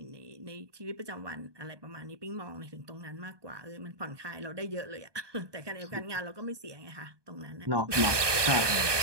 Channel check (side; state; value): left; late; 1.2 ms